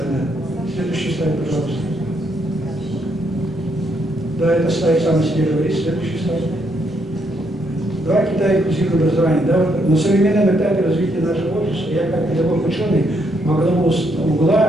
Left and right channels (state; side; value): normal; both; correlation 0.75